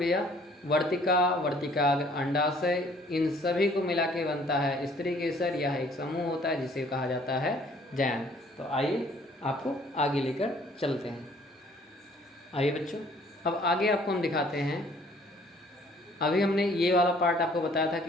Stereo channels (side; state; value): both; normal; correlation 0.58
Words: वर्तिका, वर्तिकाग्र, अंडाशय, इन सभी को मिला के बनता है स्त्री केसर। यह एक समूह होता है जिसे कहा जाता है जयांग। तो आइए आपको आगे लेकर चलते हैं। आइए बच्चों, अब आगे आपको हम दिखाते हैं। अभी हमने ये वाला पार्ट आपको बताया था